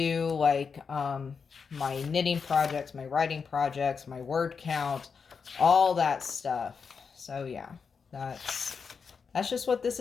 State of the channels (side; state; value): right; quieter; 5.7 dB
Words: like my knitting projects, my writing projects, my word count, all that stuff. So yeah, that's just what this